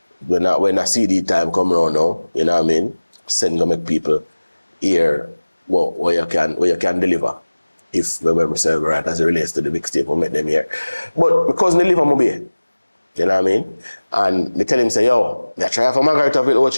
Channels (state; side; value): inverted; both; correlation -1.00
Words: When a CD time come around now, you know what I mean? Send to make people hear what you can deliver. If my memory serves right as it relates to the mixtape, we'll make them here. But because they live on Mobile, you know what I mean? And they tell him, say, yo, I try for Margaret of